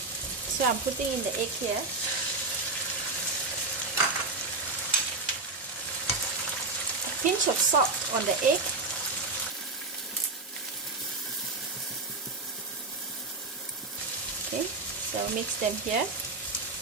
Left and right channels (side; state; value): left; quieter; 3.5 dB